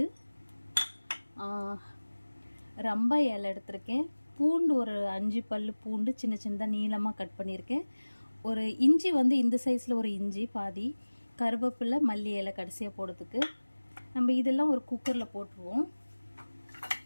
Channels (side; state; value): both; inverted; correlation -1.00